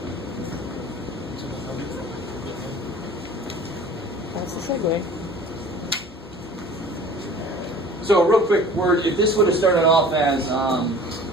That's the segue. So a real quick word, if this would have started off as,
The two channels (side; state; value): both; normal; correlation 0.45